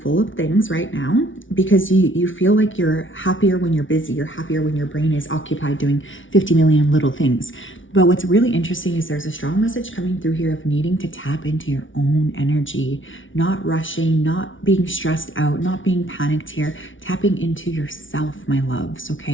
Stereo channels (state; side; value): late; right; 0.56 ms